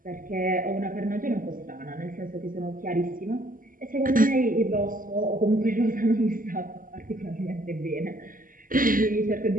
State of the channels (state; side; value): late; left; 0.40 ms